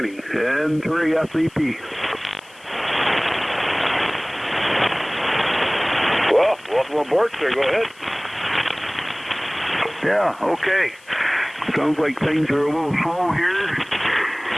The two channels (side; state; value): left; noise; hiss, 26 dB below the sound